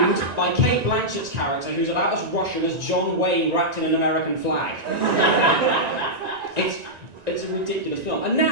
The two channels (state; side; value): late; left; 1.9 ms